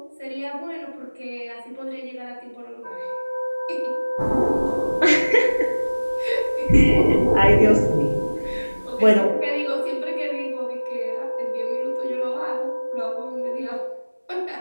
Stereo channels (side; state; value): both; inverted; correlation -1.00